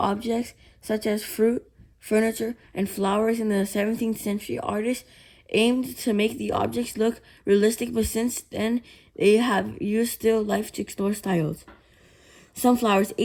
such as fruit, furniture, and flowers. In the 17th century, artists aimed to make the objects look realistic, but since then they have used still life to explore styles. Sunflowers.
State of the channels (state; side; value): identical; both; correlation 1.00